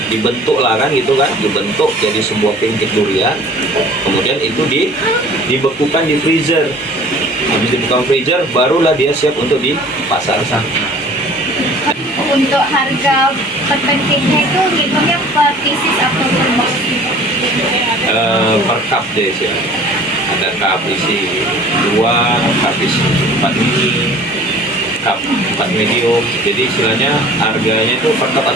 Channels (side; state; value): both; normal; correlation 0.48